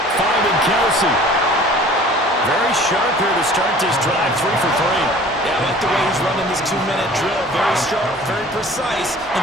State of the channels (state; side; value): normal; both; correlation 0.48